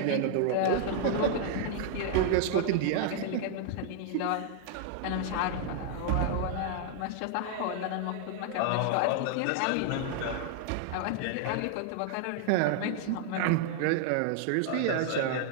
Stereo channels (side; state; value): both; different; correlation 0.00